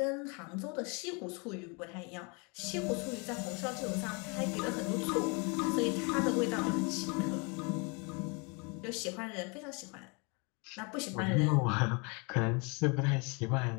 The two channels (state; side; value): quieter; right; 31.8 dB